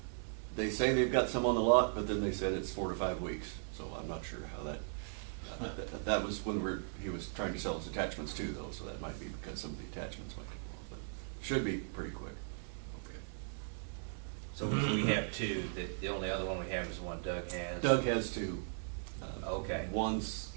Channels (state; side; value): silent; left; 52 dB below the other